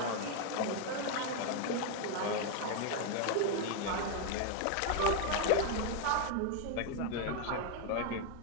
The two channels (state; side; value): different; both; correlation 0.01